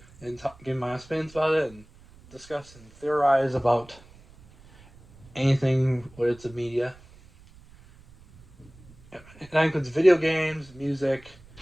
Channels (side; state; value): right; noise; rumble, 24 dB below the sound